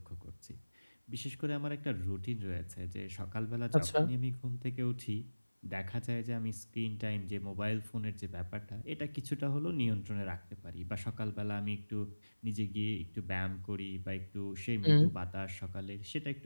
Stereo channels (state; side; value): inverted; both; correlation -1.00